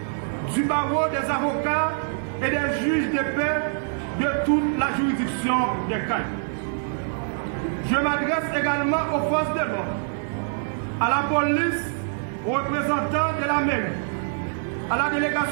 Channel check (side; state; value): left; silent; 62 dB below the other